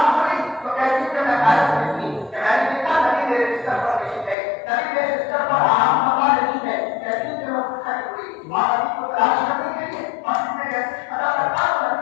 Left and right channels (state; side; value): drops out; right; at 4.4 s